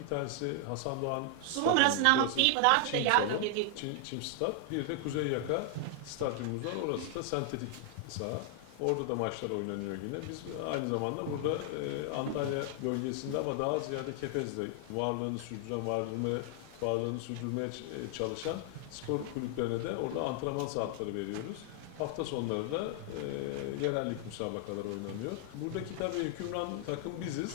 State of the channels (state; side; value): different; both; correlation 0.00